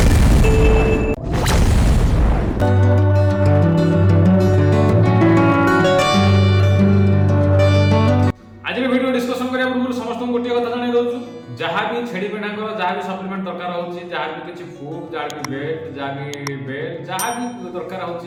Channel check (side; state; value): both; identical; correlation 1.00